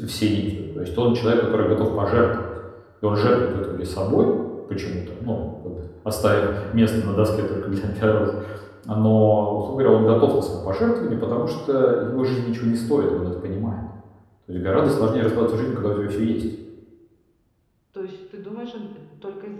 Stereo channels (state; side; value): identical; both; correlation 1.00